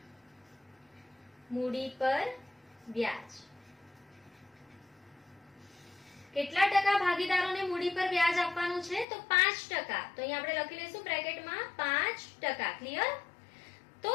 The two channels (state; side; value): drops out; right; at 9.1 s